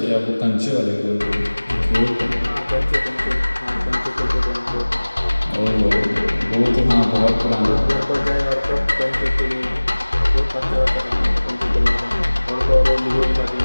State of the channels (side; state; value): both; inverted; correlation -1.00